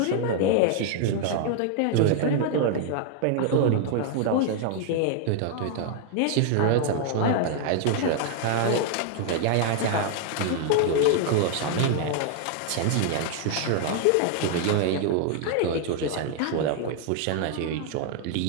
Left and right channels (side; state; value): both; different; correlation 0.00